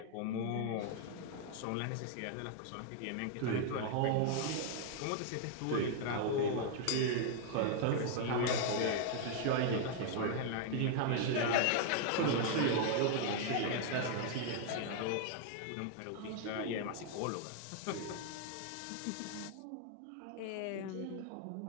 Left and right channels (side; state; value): both; different; correlation 0.00